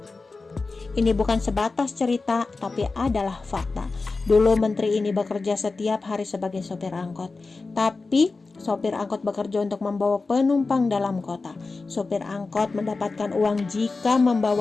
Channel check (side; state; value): right; quieter; 3.9 dB